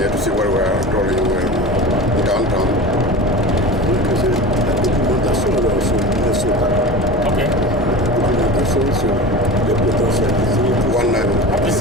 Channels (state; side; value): normal; both; correlation 0.32